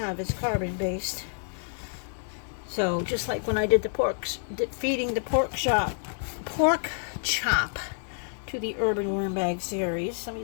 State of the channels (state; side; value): silent; right; 59 dB below the other